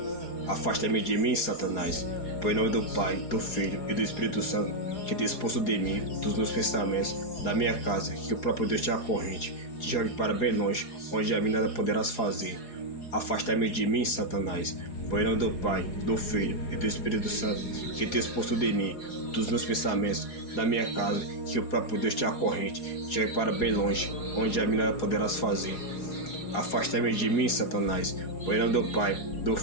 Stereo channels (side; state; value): right; late; 4.8 ms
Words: Afasta-me de mim, Satanás, por nome do Pai, do Filho e do Espírito Santo, que te expulso de mim, dos meus pensamentos, da minha casa, que o próprio Deus te acorrente, te jogue para bem longe, onde a mim nada poderás fazer. Afasta-me de mim, Satanás, por nome do Pai, do Filho e do Espírito Santo, que te expulso de mim, dos meus pensamentos, da minha casa, que o próprio Deus te acorrente, te jogue para bem longe, onde a mim nada poderás fazer. Afasta-me de mim, Satanás, por nome do Pai, do